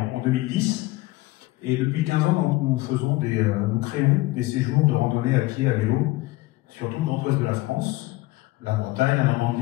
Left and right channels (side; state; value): right; quieter; 19.5 dB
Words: 2010 et depuis 15 ans nous créons des séjours de randonnée à pied, à vélo sur tout le Grand Ouest de la France, la Bretagne, la